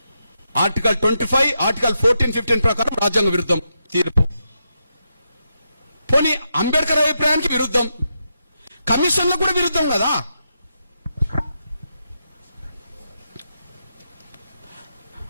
ఆర్టికల్ 25, ఆర్టికల్ 14, 15 ప్రకారం రాజ్యాంగ విరుద్ధం తీర్పు. పోనీ అంబేద్కర్ అభిప్రాయానికి విరుద్ధం, కమిషన్లకు కూడా విరుద్ధం కదా.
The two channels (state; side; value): inverted; both; correlation -0.84